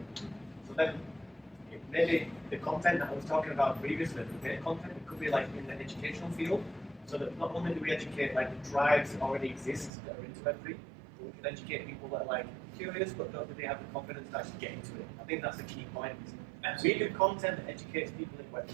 then maybe the content that I was talking about previously, the debate content, it could be like in the educational field, so that not only do we educate like the tribes that already exist that are into Web3, but we can educate people that are like curious but don't really have the confidence to actually get into it. I think that's the key point. We do content that educates people in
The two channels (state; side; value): drops out; left; at 9.9 s